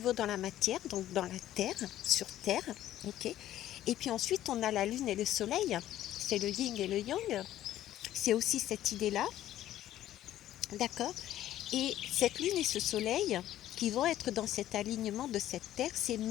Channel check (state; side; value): quieter; right; 13.0 dB